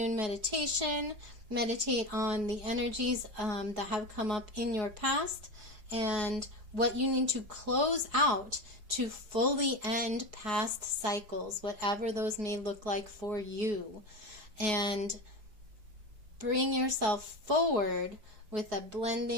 meditation. Meditate on the energies that have come up in your past and what you need to close out to fully end past cycles, whatever those may look like for you. And bring yourself forward with a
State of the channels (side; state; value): left; late; 4.7 ms